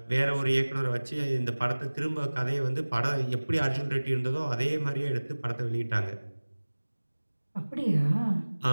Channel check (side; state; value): both; inverted; correlation -1.00